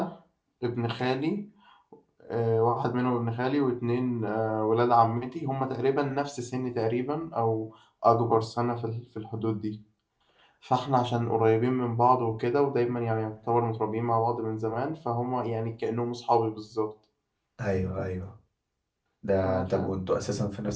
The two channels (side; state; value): both; identical; correlation 1.00